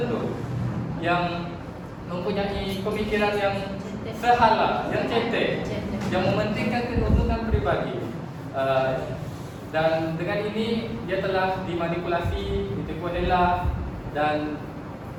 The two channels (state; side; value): identical; both; correlation 1.00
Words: yang mempunyai pemikiran yang sehala, yang cetek, yang mementingkan keuntungan pribadi. Dan dengan ini dia telah dimanipulasi, ditipu dela, dan